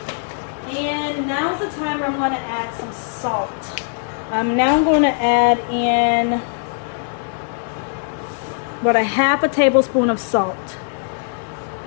And now's the time where I'm gonna add some salt. Now I'm gonna add in about a half a tablespoon of salt.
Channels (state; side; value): silent; right; digital silence